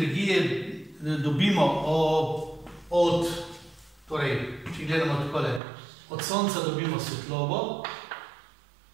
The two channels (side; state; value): left; drops out; at 5.6 s